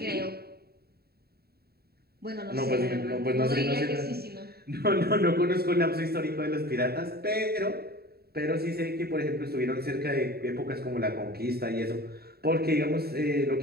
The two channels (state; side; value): late; left; 0.46 ms